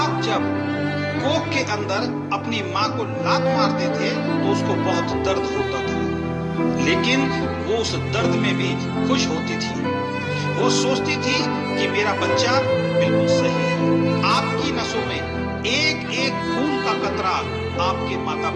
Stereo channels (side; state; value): both; identical; correlation 1.00